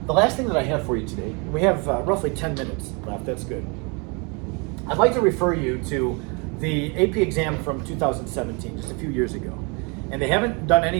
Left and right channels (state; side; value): quieter; left; 31.7 dB